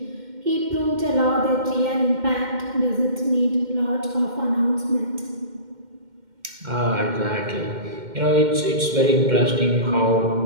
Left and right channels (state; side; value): late; left; 2.1 ms